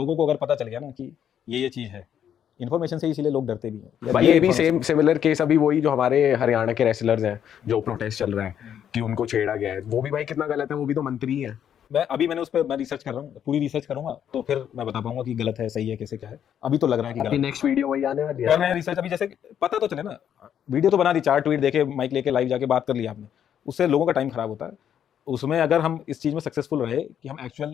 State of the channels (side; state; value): right; quieter; 9.3 dB